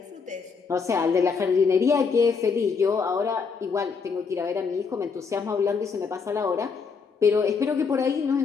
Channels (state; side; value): quieter; right; 5.4 dB